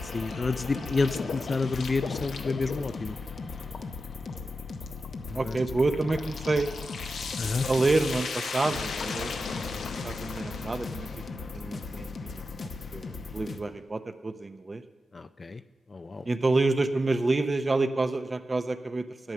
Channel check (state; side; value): normal; both; correlation 0.90